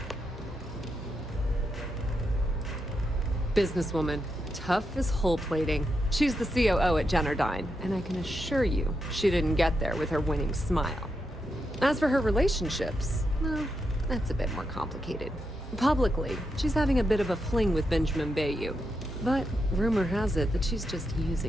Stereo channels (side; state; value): both; normal; correlation 0.85